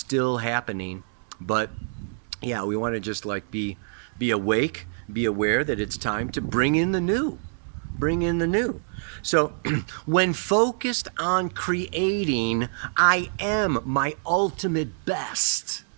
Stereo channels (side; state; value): left; silent; 61 dB below the other